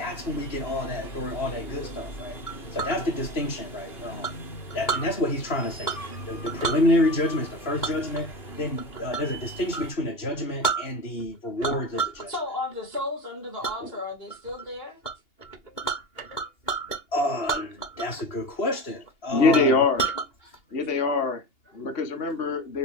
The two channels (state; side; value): late; right; 2.8 ms